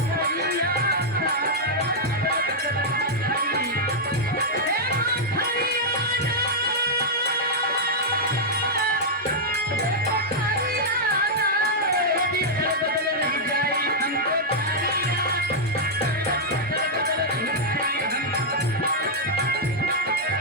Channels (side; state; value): both; normal; correlation -0.06